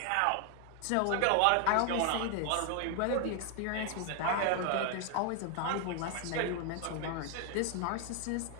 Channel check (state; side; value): different; both; correlation 0.00